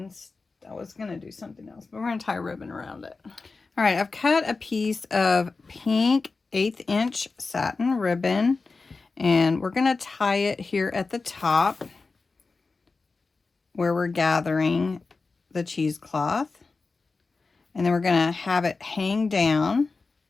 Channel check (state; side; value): quieter; right; 4.0 dB